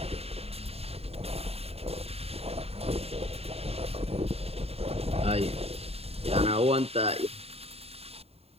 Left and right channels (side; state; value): left; late; 0.29 ms